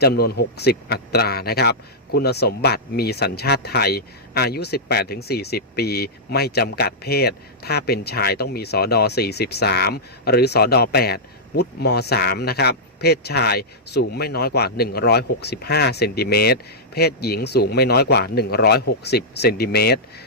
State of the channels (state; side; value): normal; both; correlation -0.10